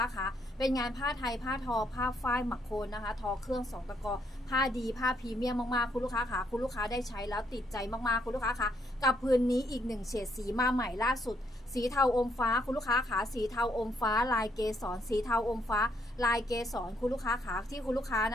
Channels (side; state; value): both; normal; correlation 0.73